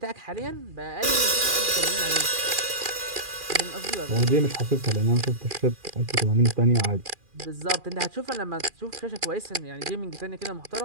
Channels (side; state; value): left; late; 2.4 ms